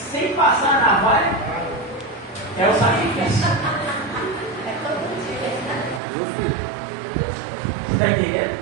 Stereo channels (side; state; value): left; drops out; at 6.0 s